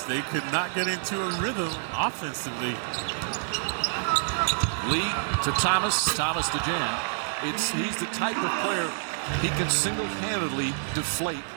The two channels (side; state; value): left; silent; digital silence